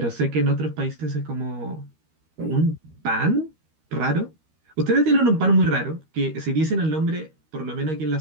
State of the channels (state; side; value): late; left; 13 ms